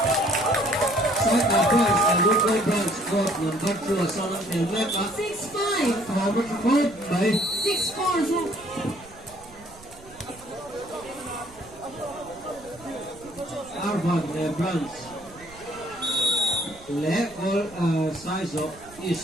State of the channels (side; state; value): right; noise; rumble, 22 dB below the sound